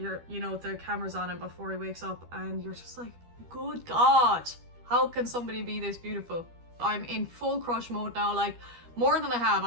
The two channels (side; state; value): left; late; 12 ms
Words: you know, the camera's on him before he wakes up and you're just like, good god, how can somebody be this beautiful? I'm in full crush mode now, like, more than I have.